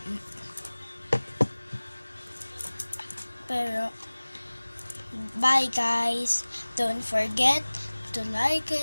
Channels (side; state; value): both; inverted; correlation -1.00